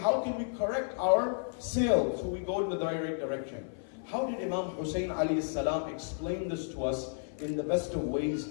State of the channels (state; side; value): silent; right; 56 dB below the other